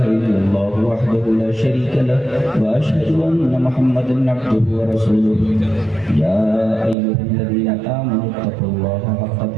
إلا الله وحده لا شريك له وأشهد أن محمدا عبده ورسوله يا أيها الذين آمنوا اتقوا الله حق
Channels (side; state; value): left; drops out; at 7.0 s